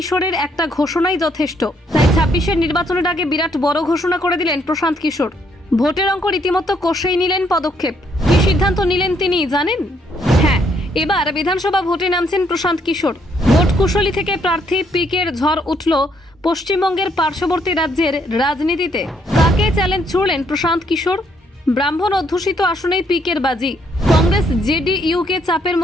একটা ঘোষণাই যথেষ্ট। তাই ২৬-এর নির্বাচনের আগে বিরাট বড় ঘোষণা করে দিলেন প্রশান্ত কিশোর। ভোটের অঙ্ক রীতিমতো কষেই নিলেন পদক্ষেপ। কি সিদ্ধান্ত নিলেন তিনি জানেন? হ্যাঁ, এবার বিধানসভা ভোটে নামছেন প্রশান্ত কিশোর। ভোট কুশলী থেকে প্রার্থী পিকের ঝড় উঠল পশ্চিমবঙ্গের পার্শ্ববর্তী রাজ্যের রাজনীতিতে। কাকে চ্যালেঞ্জ ছুড়লেন প্রশান্ত কিশোর? ব্রাহ্মণ অধ্যুষিত আসনেই পিকের বাজি। কংগ্রেস জেডিইউকে চাপের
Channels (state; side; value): normal; both; correlation 0.71